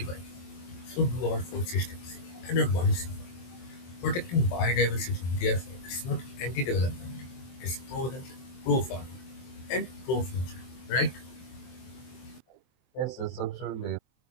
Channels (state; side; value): late; right; 23 ms